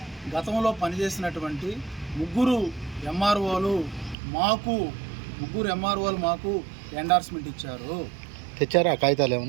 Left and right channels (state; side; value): drops out; left; at 4.2 s